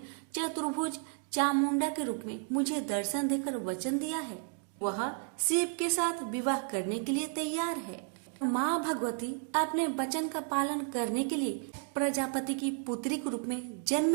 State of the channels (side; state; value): left; quieter; 38.8 dB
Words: चतुर्भुज चामुंडा के रूप में मुझे दर्शन देकर वचन दिया है। वह शिव के साथ विवाह करने के लिए तैयार है। माँ भगवती अपने वचन का पालन करने के लिए प्रजापति की पुत्री के रूप में